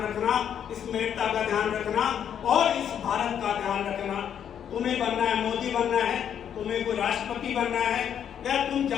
रखना, इस मेड़ता का ध्यान रखना और इस भारत का ध्यान रखना। तुम्हें बनना है, मोदी बनना है, तुम्हें कोई राष्ट्रपति बनना है, या तुम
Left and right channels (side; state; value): right; quieter; 9.0 dB